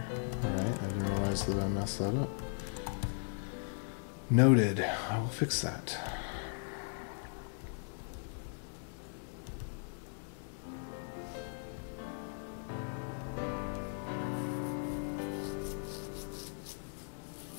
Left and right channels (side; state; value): right; silent; 53 dB below the other